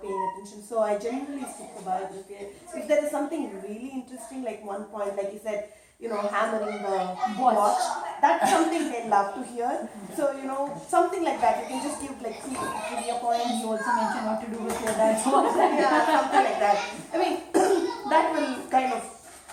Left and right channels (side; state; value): both; identical; correlation 1.00